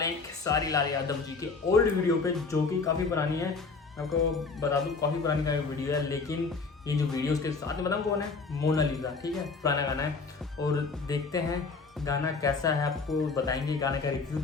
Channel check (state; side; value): quieter; right; 4.4 dB